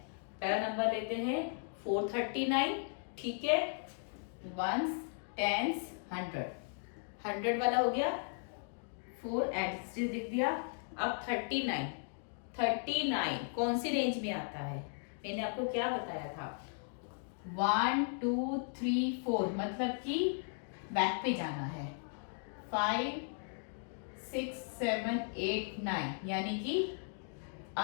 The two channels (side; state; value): right; silent; 53 dB below the other